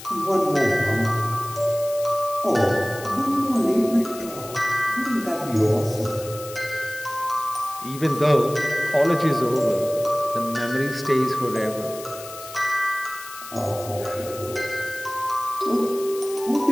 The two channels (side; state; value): left; noise; hiss, 14 dB below the sound